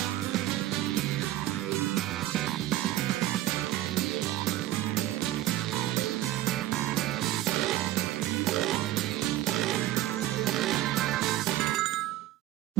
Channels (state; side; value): quieter; left; 14.5 dB